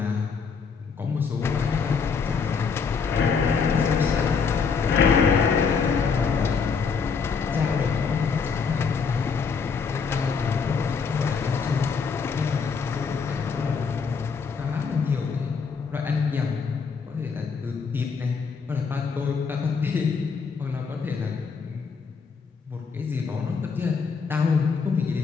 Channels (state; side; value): quieter; right; 5.6 dB